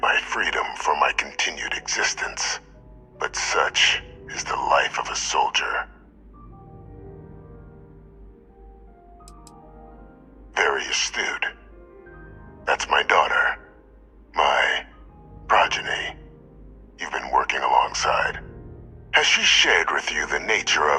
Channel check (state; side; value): identical; both; correlation 1.00